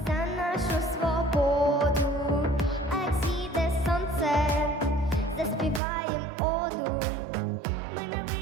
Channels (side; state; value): left; drops out; at 5.8 s